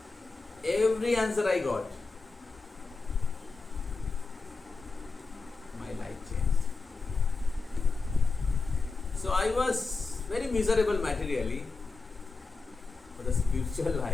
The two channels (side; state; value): right; quieter; 4.1 dB